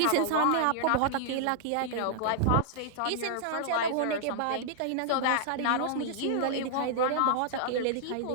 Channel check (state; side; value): different; both; correlation -0.01